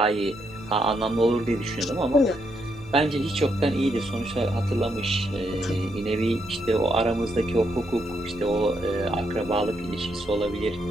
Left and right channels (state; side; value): noise; right; hum, 20 dB below the sound